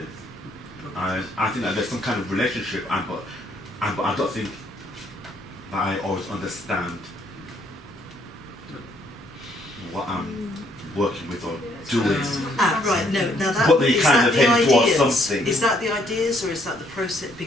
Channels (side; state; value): both; normal; correlation 0.68